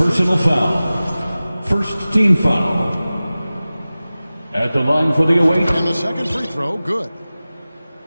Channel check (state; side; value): inverted; both; correlation -0.97